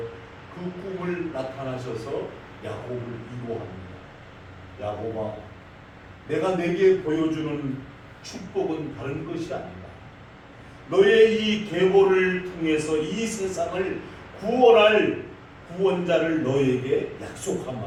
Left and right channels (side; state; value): both; identical; correlation 1.00